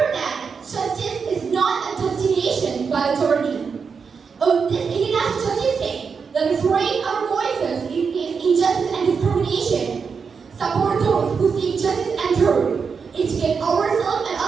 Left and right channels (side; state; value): left; quieter; 5.7 dB